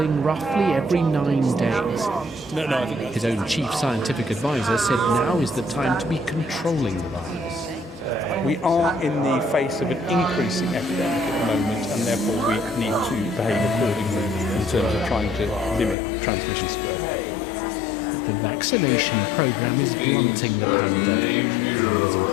roughly every 9 days. His own chief scientific advisor said now is the time to be controlling the virus. We are in the face of an increasing epidemic at the moment, and therefore we need to behave accordingly in terms of trying to limit transmission spread. The vaccination program is blunting the pandemic. Numbers in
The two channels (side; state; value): right; drops out; at 16.0 s